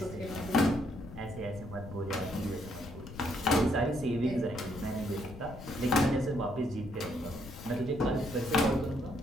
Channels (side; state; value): left; noise; rumble, 13 dB below the sound